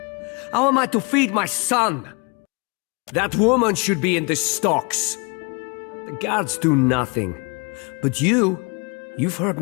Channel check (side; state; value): right; quieter; 31.8 dB